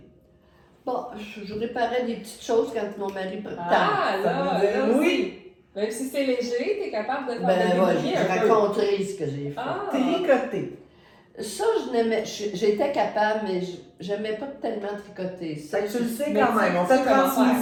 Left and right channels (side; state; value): both; identical; correlation 1.00